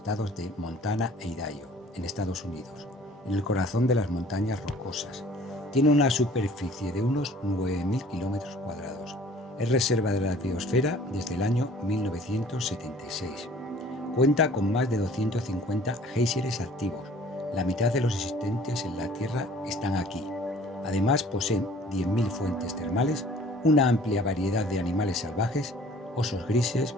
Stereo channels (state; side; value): normal; both; correlation 0.51